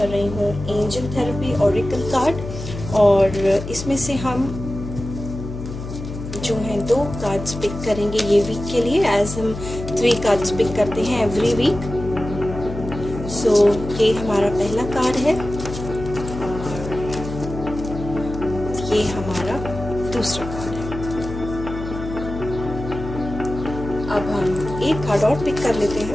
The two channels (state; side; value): noise; left; hum, 8 dB below the sound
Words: रही हूँ एंजल थेरेपी ऑरेकल कार्ड, और इसमें से हम जो हैं 2 कार्ड्स पिक करेंगे ये वीक के लिए, एज हम 3 कार्ड्स पिक करते हैं एवरी वीक। सो ये हमारा पहला कार्ड है और ये हमारा दूसरा कार्ड है। अब हम एक कार्ड और पिक कर लेते